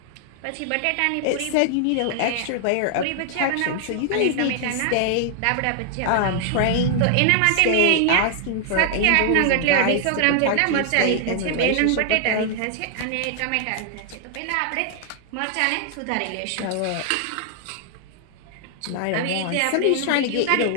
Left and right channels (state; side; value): different; both; correlation 0.00